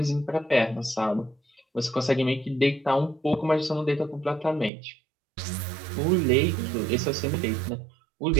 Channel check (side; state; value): left; drops out; at 4.7 s